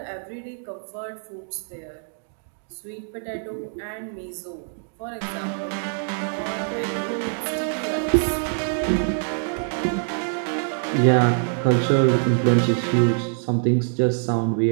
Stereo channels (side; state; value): left; silent; digital silence